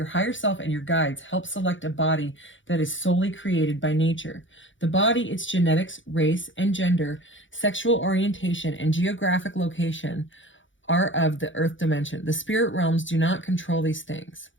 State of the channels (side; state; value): right; late; 0.56 ms